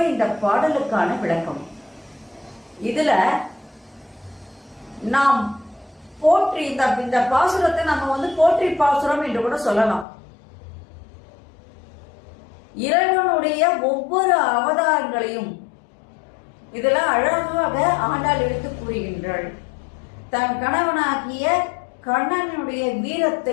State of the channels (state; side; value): drops out; right; at 10.1 s